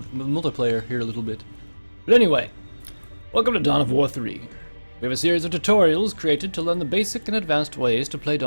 here a little bit. But anyway, welcome to Dawn of War 3. We have a series of tutorials created to learn the basic and advanced ways to play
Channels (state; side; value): inverted; both; correlation -1.00